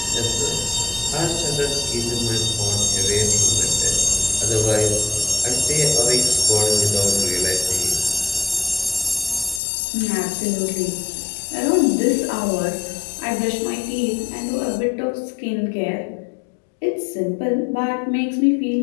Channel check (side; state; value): right; drops out; at 9.6 s